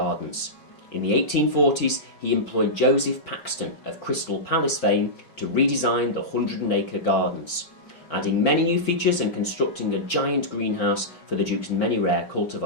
In the 1840s, he employed Joseph Paxton of Crystal Palace fame to redesign the 100-acre gardens, adding many new features and constructing a giant greenhouse for the Duke's many rare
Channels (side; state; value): right; late; 5.3 ms